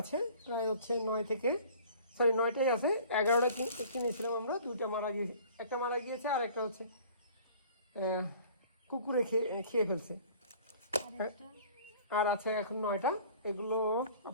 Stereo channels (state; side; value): inverted; both; correlation -0.49